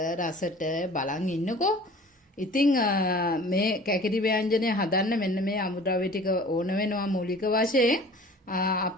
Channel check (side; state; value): both; normal; correlation 0.45